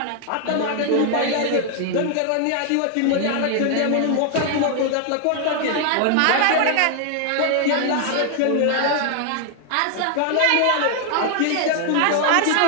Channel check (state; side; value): different; both; correlation 0.00